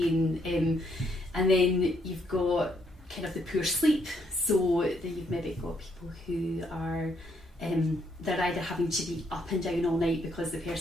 and then you've got kind of the poor sleep. So then you've maybe got people who are they're either having to be up and down all night because the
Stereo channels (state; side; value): normal; both; correlation 0.73